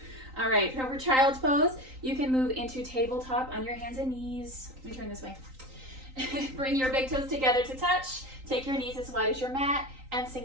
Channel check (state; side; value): late; left; 3.9 ms